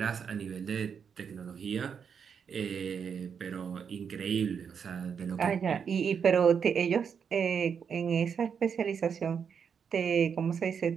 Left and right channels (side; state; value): left; quieter; 6.9 dB